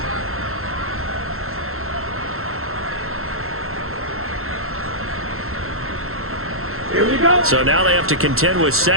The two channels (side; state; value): left; late; 0.62 ms